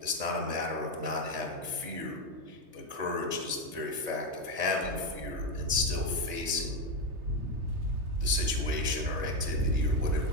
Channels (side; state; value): left; late; 3.3 ms